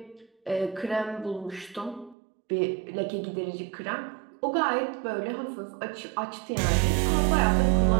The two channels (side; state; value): left; drops out; at 2.1 s